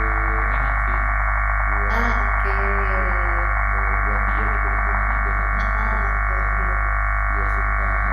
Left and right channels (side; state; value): both; identical; correlation 1.00